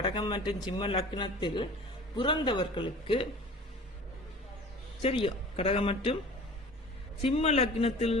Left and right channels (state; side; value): normal; both; correlation 0.42